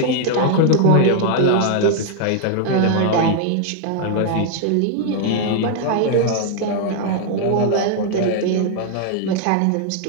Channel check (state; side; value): different; both; correlation 0.00